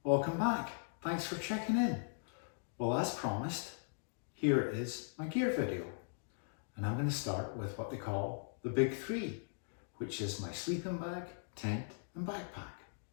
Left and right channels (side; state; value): right; silent; digital silence